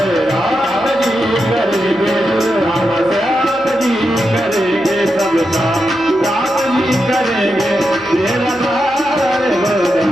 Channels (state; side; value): noise; left; hum, 27 dB below the sound